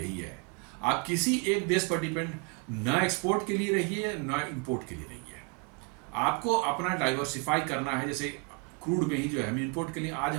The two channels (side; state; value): left; quieter; 31.9 dB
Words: है। आप किसी एक देश पर डिपेंड न एक्सपोर्ट के लिए रहिए न इंपोर्ट के लिए रहिए, आपको अपना डाइवर्सिफाई करना है। जैसे क्रूड में ही जो है हम इंपोर्ट के लिए आज